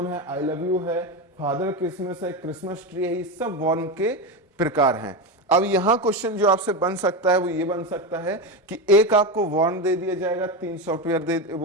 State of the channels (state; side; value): normal; both; correlation 0.15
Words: है, आई लव यू है, फादर क्रिसमस है, क्रिसमस ट्री है, ये सब वॉर्म के प्रकार हैं। अब यहां क्वेश्चन जो आपसे बन सकता है वो ये बन सकता है कि एक आपको वॉर्म दे दिया जाएगा, 3 सॉफ्टवेयर